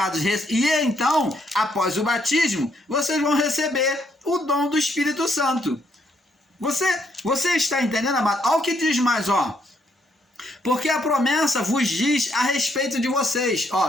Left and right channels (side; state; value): both; normal; correlation 0.72